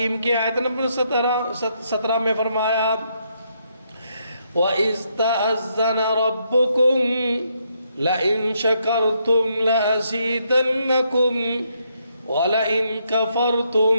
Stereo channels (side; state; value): both; inverted; correlation -0.76